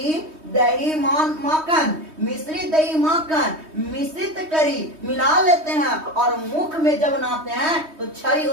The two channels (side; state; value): left; late; 3.2 ms